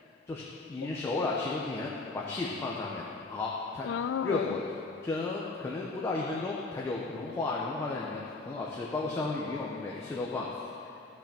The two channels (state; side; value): quieter; right; 3.3 dB